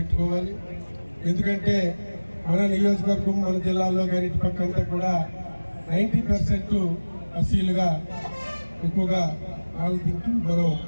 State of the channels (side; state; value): both; inverted; correlation -1.00